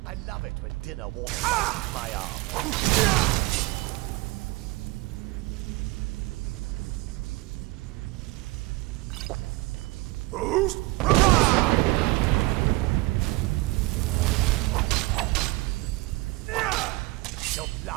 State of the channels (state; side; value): quieter; left; 21.9 dB